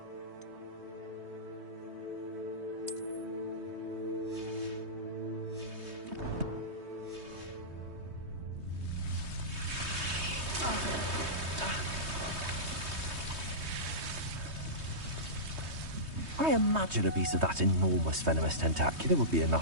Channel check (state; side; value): late; left; 3.2 ms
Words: I imagine a piece of that enormous venomous tentacular would be